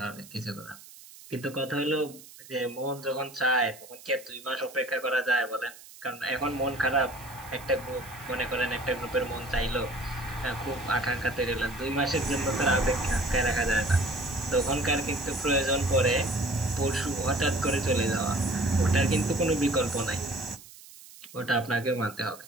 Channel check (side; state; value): right; noise; hiss, 19 dB below the sound